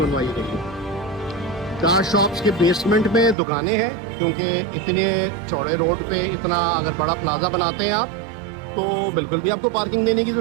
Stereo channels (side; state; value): left; drops out; at 3.4 s